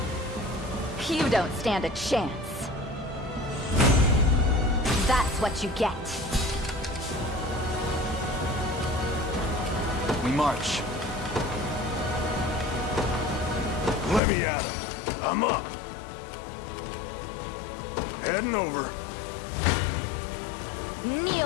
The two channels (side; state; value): right; drops out; at 14.2 s